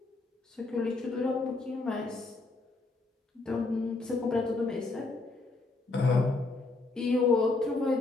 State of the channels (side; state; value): right; quieter; 3.4 dB